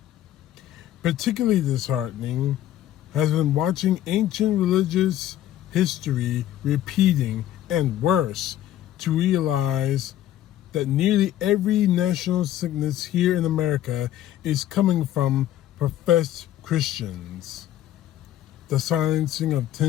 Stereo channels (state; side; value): quieter; right; 12.6 dB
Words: Particularly disheartening has been watching ancient religious history repeating, and worse, to realize that nearly every national sickness here in America is coming from professed Christians. The silencing of